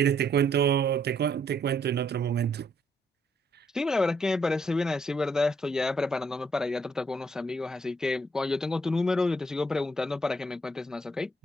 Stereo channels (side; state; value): both; normal; correlation 0.70